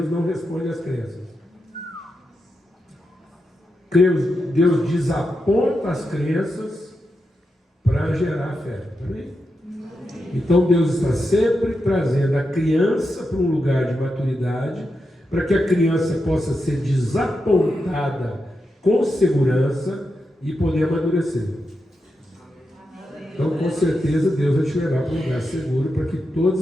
não responde às crenças. Deus desaponta as crenças para gerar fé. Amém? Então Deus está sempre trazendo a criança para um lugar de maturidade, para que a criança possa ser desapontada com segurança e poder amadurecer. Então, com certeza, Deus vai te levar para um lugar seguro para que todas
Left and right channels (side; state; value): both; normal; correlation 0.87